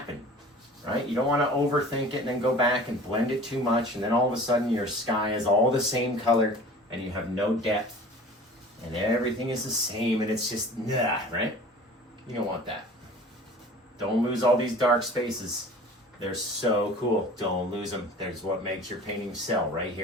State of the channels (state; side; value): normal; both; correlation 0.43